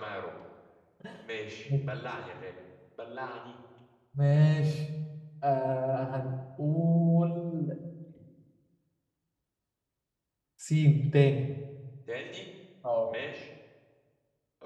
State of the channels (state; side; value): identical; both; correlation 1.00